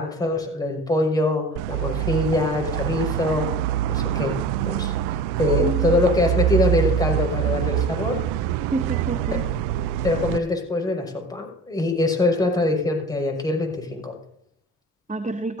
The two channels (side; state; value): both; normal; correlation 0.39